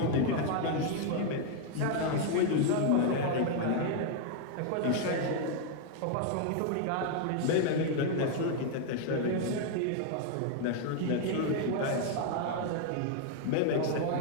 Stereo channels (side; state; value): both; different; correlation 0.00